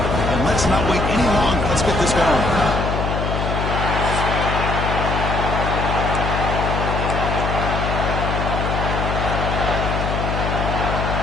and let's not wait any longer. Let's get this going.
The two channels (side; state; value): left; noise; hum, 1 dB below the sound